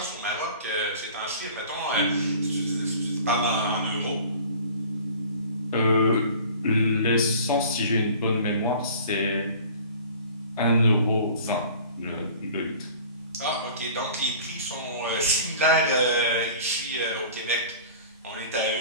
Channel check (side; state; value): both; inverted; correlation -0.44